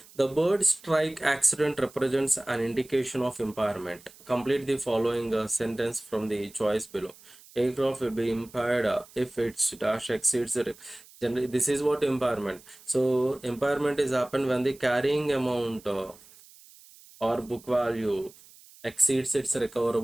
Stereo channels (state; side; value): noise; right; hiss, 23 dB below the sound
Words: the bird strike accident represents an indication of impairment. Complete the following sentence from the choice below. Aircraft will be impaired if its dash exceeds the generally. This is what impairment. So impairment is happened when the carrying amount or book value exceeds its